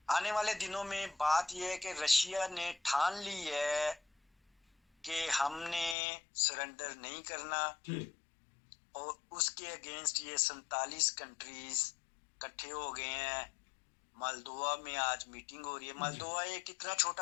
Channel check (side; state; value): right; drops out; at 6.0 s